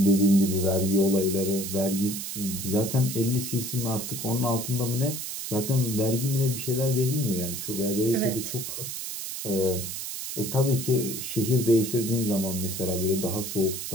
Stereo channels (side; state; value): right; noise; hiss, 6 dB below the sound